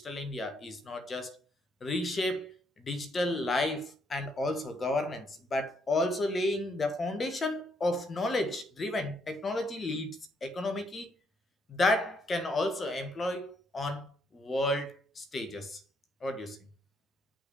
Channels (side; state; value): both; normal; correlation 0.73